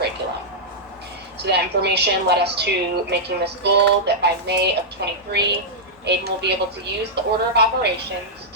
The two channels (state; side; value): normal; both; correlation -0.09